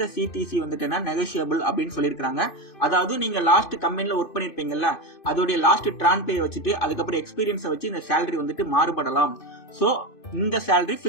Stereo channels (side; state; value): right; late; 2.5 ms